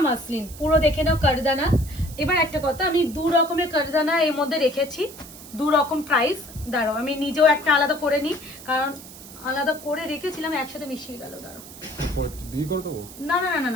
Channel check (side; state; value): right; noise; hiss, 16 dB below the sound